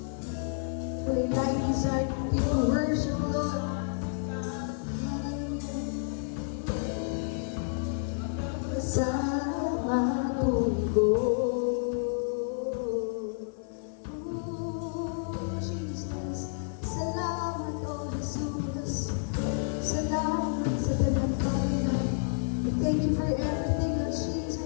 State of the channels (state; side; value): silent; right; 56 dB below the other